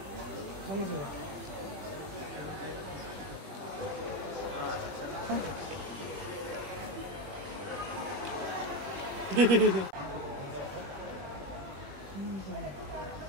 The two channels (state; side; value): late; left; 21 ms